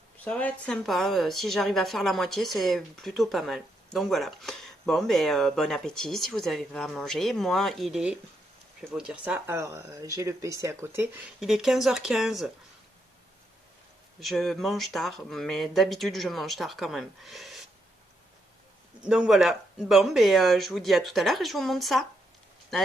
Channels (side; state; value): both; normal; correlation 0.79